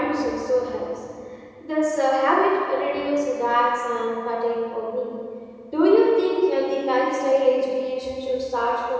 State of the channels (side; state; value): both; identical; correlation 1.00